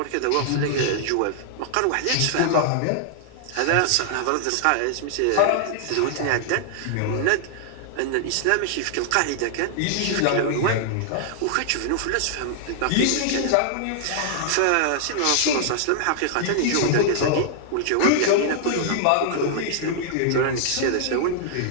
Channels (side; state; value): both; different; correlation -0.01